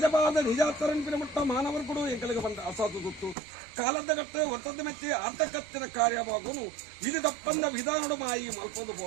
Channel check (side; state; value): left; drops out; at 3.4 s